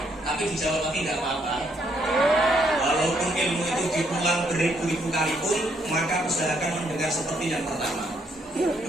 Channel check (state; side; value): normal; both; correlation 0.72